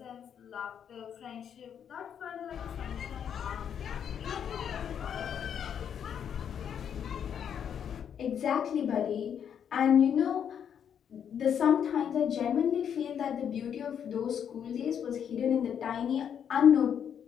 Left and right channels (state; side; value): quieter; right; 8.4 dB